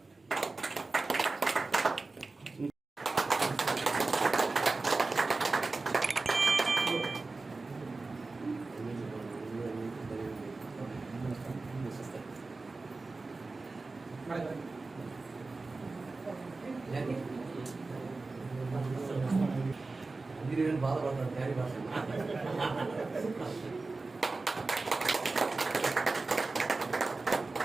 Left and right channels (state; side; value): quieter; left; 3.6 dB